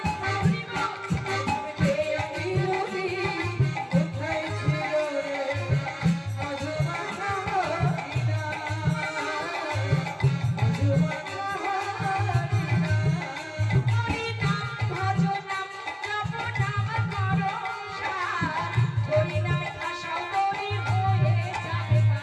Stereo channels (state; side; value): identical; both; correlation 1.00